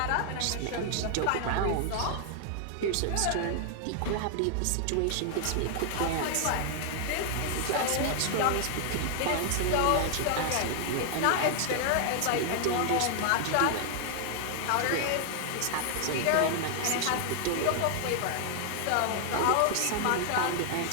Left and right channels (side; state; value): both; different; correlation 0.00